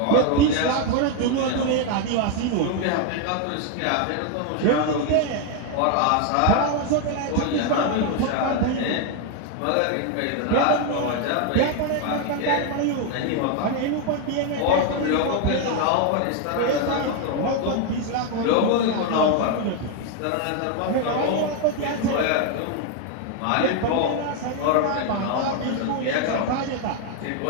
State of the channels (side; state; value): both; different; correlation 0.01